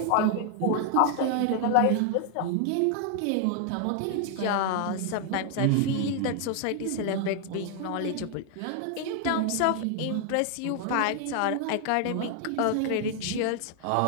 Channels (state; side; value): different; both; correlation 0.00